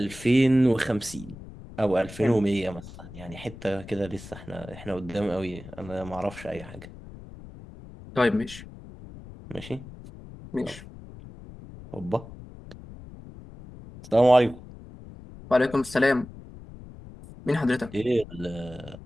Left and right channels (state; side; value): noise; left; rumble, 16 dB below the sound